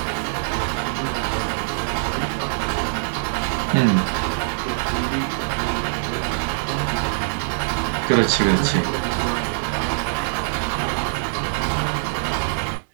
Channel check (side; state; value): left; silent; digital silence